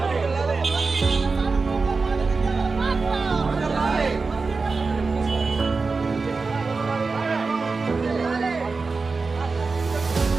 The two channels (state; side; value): quieter; left; 4.2 dB